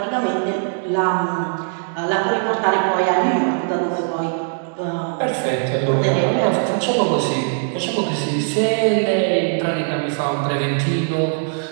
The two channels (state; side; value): silent; left; 66 dB below the other